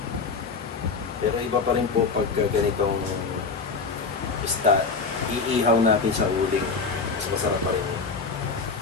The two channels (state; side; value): quieter; right; 4.7 dB